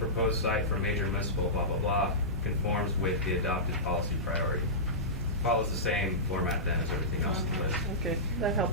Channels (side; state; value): both; normal; correlation -0.17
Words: site for major municipal blah, blah, blah, conforms with the adopted policy priority. Follows the same format then as everything else in the list. Okay, that